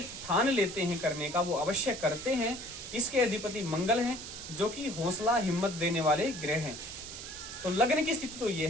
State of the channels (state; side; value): noise; right; hiss, 10 dB below the sound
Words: ठान लेते हैं करने का वो अवश्य करते हैं। इसके अधिपति मंगल हैं, जो कि हौसला हिम्मत देने वाले ग्रह हैं। तो लग्न की स्थिति तो ये